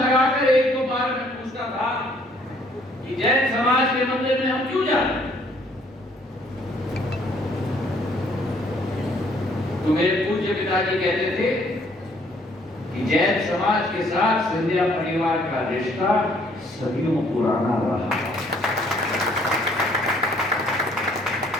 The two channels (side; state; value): both; normal; correlation 0.63